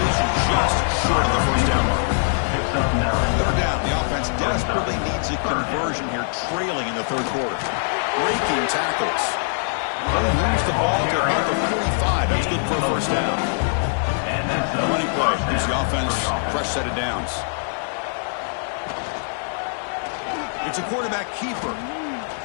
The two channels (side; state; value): right; silent; digital silence